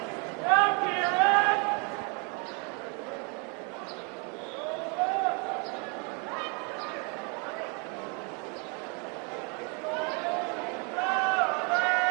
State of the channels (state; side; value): quieter; left; 34.6 dB